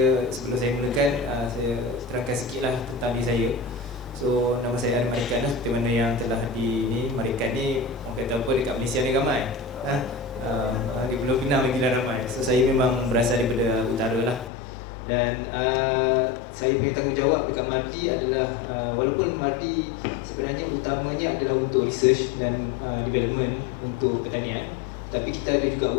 sebelum saya mulakan, saya terangkan sedikitlah tentang diri saya. So nama saya Merican, seperti mana yang telah di Merican ni, orang kata apa dekat Malaysia ni ramai. Di Pulau Pinang lagi ramai. So saya memang berasal daripada utara lah. Dan saya punya tanggungjawab dekat MARDI adalah walaupun MARDI sebenarnya utamanya adalah untuk research dan development untuk pertanian, tapi kita ada juga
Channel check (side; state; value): right; drops out; at 14.5 s